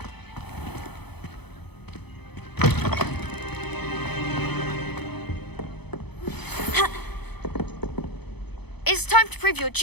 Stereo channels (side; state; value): right; late; 0.98 ms